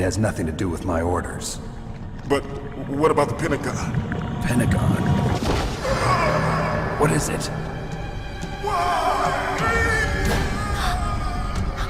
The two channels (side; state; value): both; identical; correlation 1.00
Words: nothing to do with my orders. But what about the Pentagon? Pentagon? What is it?